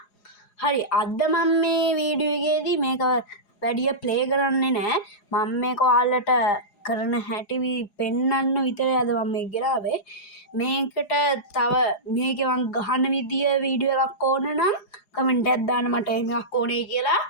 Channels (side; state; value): right; late; 4.9 ms